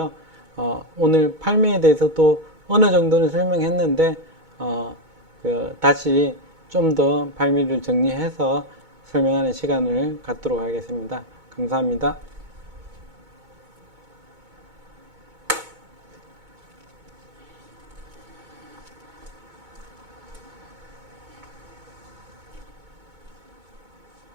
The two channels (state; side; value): late; left; 2.2 ms